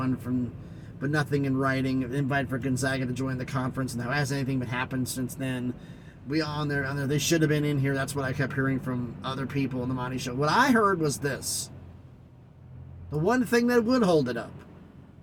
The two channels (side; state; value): both; identical; correlation 1.00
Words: from, but nothing in writing. An invite for Gonzaga to join the conference. And now, has anything been happened since then? We on there. They should have been in here. That's what I kept hearing from other people on the Monty Show. What I heard was this. The one thing that would hold it up.